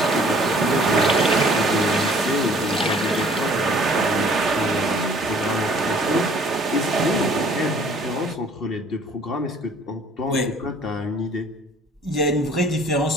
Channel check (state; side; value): normal; both; correlation 0.55